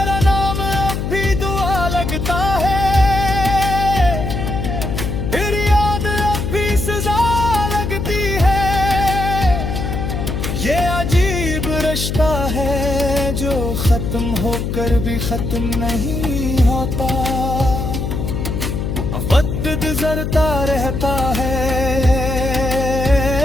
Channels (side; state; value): left; noise; hum, 2 dB below the sound